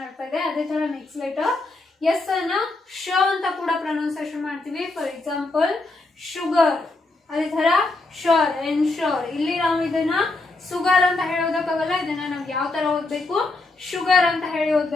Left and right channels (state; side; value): quieter; right; 3.2 dB